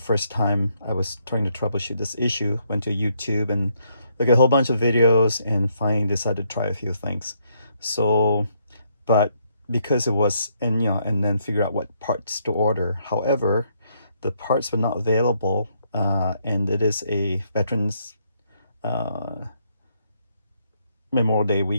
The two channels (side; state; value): both; inverted; correlation -0.73